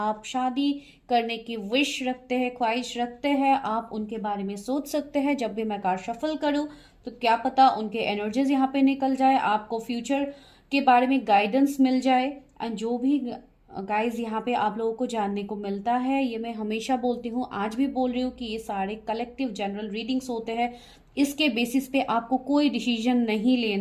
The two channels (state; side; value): identical; both; correlation 1.00